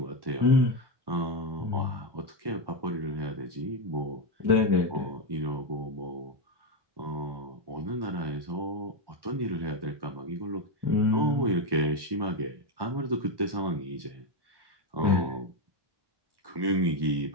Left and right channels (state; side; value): late; left; 1.1 ms